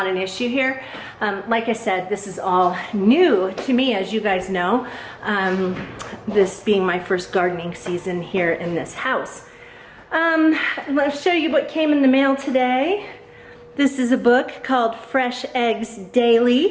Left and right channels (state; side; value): identical; both; correlation 1.00